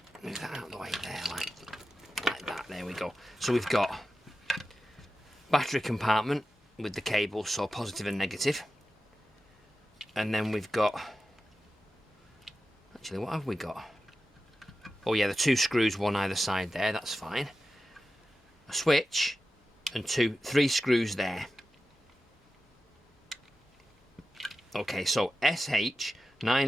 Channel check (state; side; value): normal; both; correlation 0.93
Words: Move that out of the way there, like that. There we go. So we've got battery compartment with the cable, so positive and negative. And then we've got... Actually, what have we got? Oh yeah, the two screws, one either side there, that's fine. A switch and three screws there. Okay, so